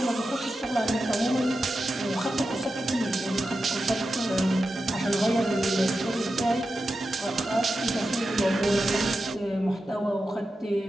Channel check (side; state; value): both; normal; correlation 0.91